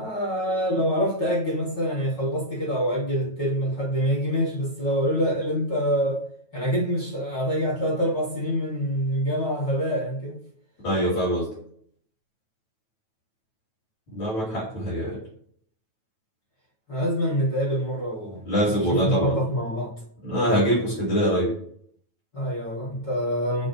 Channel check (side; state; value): right; late; 9.2 ms